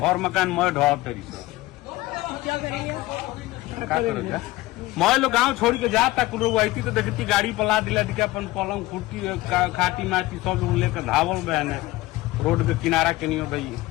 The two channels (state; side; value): quieter; right; 18.6 dB